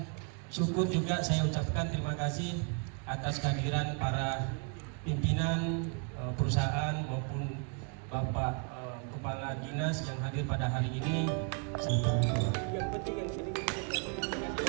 syukur juga saya ucapkan terima kasih atas kehadiran para pimpinan perusahaan maupun Bapak Kepala Dinas yang hadir pada hari ini.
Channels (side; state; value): left; quieter; 39.0 dB